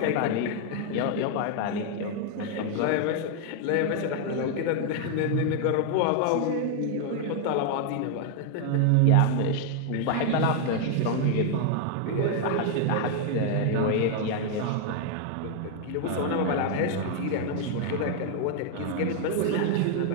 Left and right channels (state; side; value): different; both; correlation 0.00